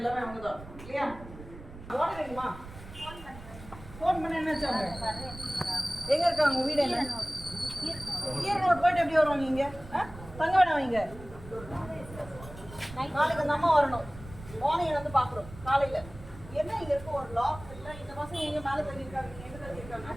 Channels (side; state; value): right; noise; rumble, 15 dB below the sound